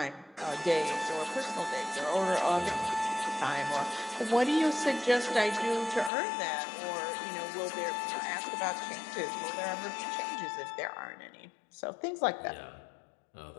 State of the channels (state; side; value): drops out; right; at 6.1 s